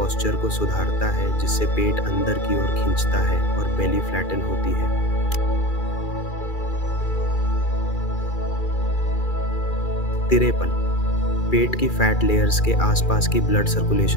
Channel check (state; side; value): late; right; 2.4 ms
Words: को सुधारता है, जिससे पेट अंदर की ओर खींचता है और बेली फ्लैटन होती है। 53 पेट की फैट लेयर्स के आसपास की ब्लड